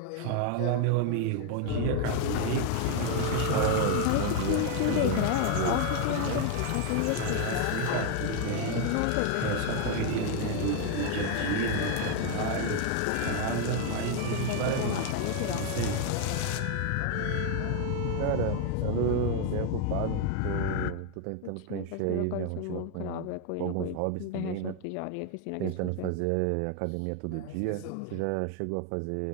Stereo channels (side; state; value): both; different; correlation 0.01